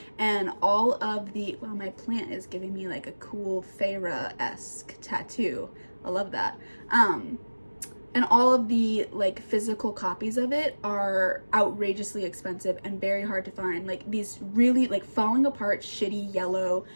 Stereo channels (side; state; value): both; inverted; correlation -1.00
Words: and all of the, wow, my plant is giving me like a cool Feyre-esque tattoo. I love that. And all of the like physical copies of it are outrageously expensive and very hard to find. Like these really like falling apart shitty yellow